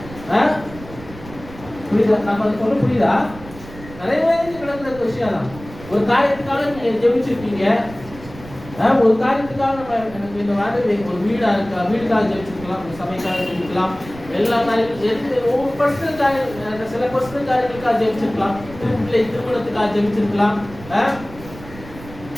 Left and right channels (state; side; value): noise; right; rumble, 16 dB below the sound